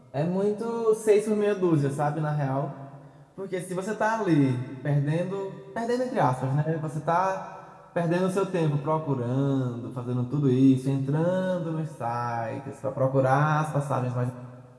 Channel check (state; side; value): identical; both; correlation 1.00